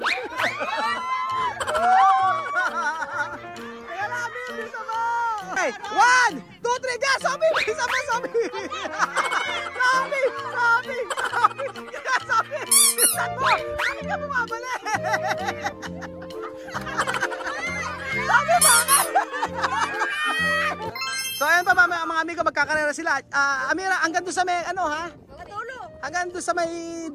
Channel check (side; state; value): both; identical; correlation 1.00